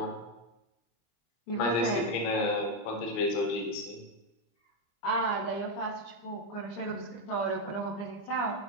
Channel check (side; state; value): right; late; 25 ms